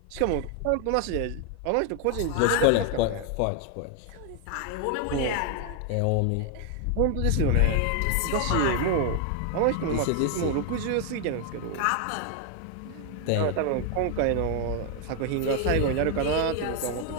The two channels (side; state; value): both; different; correlation 0.01